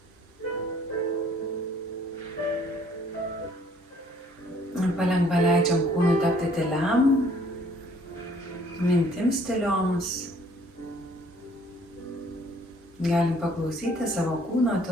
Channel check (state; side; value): normal; both; correlation 0.60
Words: Palengva leidžiam kūnui tapti tyliam, mintims tylioms. Galim paklausyti savo kūno